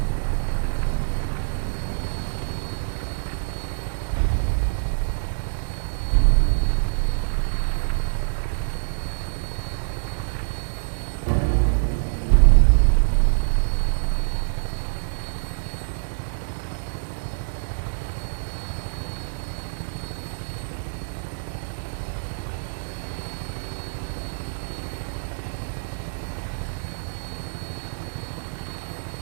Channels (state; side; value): silent; left; digital silence